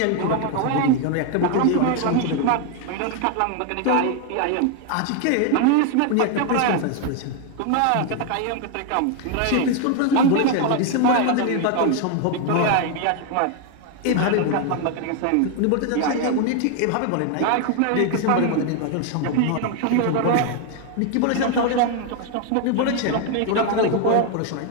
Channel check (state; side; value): different; both; correlation 0.01